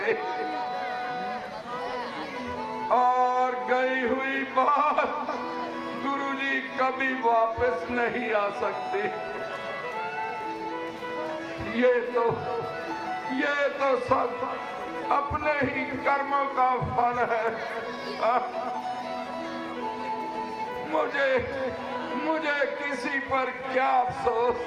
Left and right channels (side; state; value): both; identical; correlation 1.00